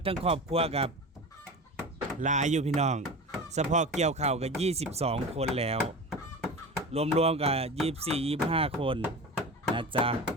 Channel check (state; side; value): normal; both; correlation 0.31